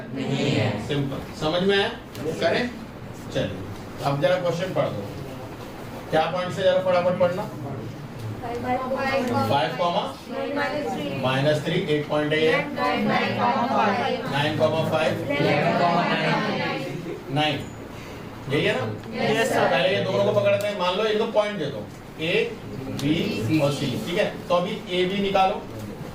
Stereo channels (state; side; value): identical; both; correlation 1.00